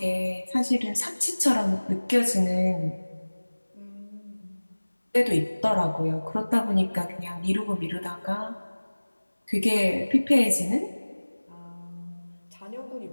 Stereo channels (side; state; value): both; inverted; correlation -1.00